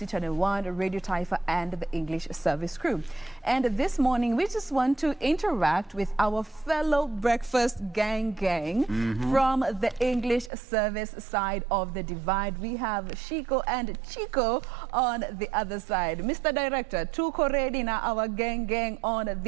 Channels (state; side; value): drops out; left; at 10.5 s